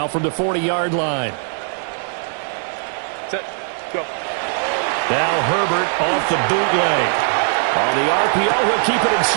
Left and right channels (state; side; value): silent; left; 60 dB below the other